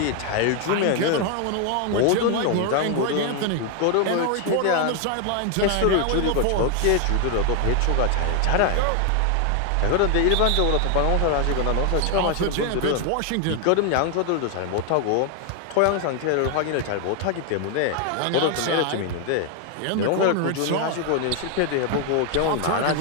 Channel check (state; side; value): different; both; correlation 0.01